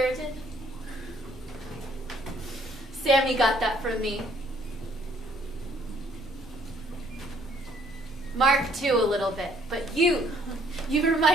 Sammy got that from me. Mark too, a little bit, but you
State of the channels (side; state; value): both; normal; correlation 0.64